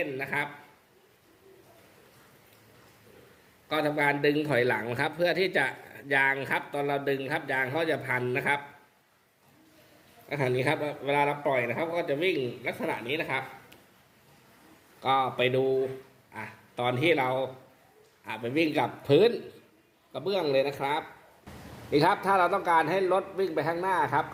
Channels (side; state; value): both; identical; correlation 1.00